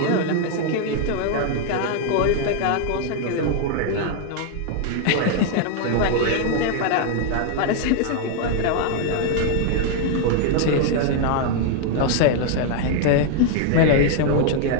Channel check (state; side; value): different; both; correlation 0.00